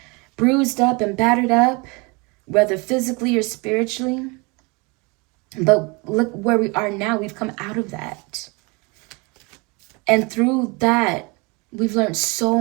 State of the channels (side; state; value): left; quieter; 28.4 dB